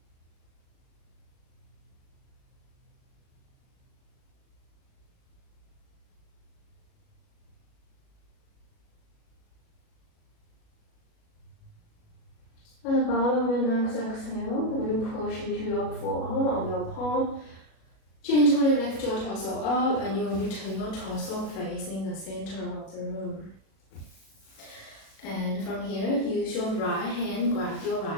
At the bottom of your next exhale, you're going to push into your forearm of your palm. Gently lift your torso up, and you're going to turn your torso facing the center of the room. And from here, use your right hand, grab your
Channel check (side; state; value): right; late; 37 ms